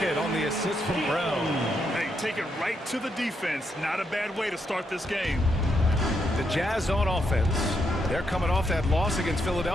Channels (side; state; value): both; normal; correlation 0.79